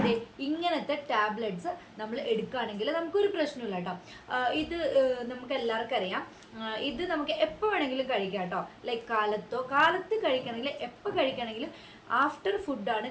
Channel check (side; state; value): both; identical; correlation 1.00